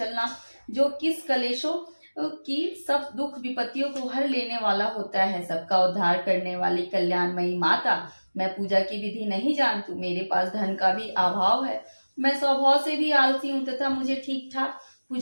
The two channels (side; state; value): both; inverted; correlation -1.00